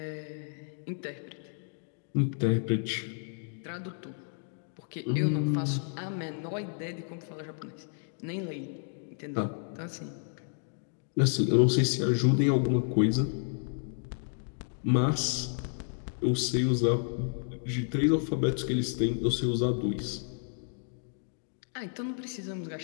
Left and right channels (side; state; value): right; silent; 57 dB below the other